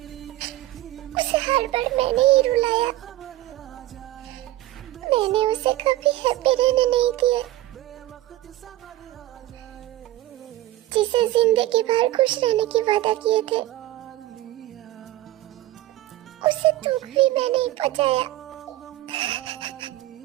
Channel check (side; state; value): left; quieter; 15.8 dB